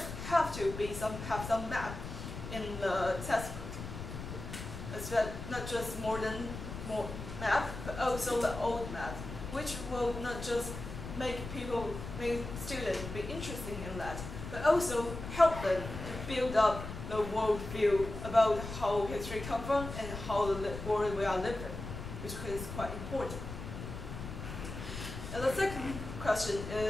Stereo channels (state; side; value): noise; left; rumble, 8 dB below the sound